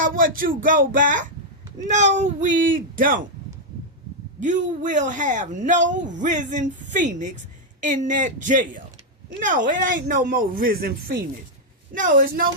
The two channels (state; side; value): normal; both; correlation -0.01